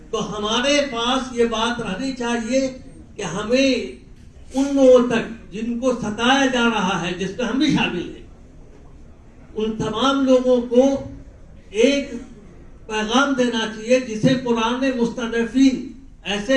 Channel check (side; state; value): both; identical; correlation 1.00